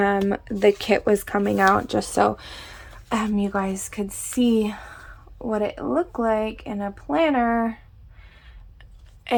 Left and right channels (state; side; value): identical; both; correlation 1.00